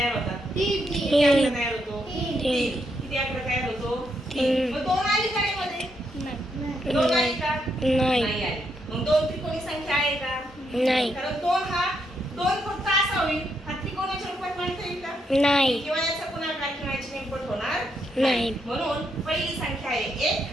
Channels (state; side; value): normal; both; correlation 0.78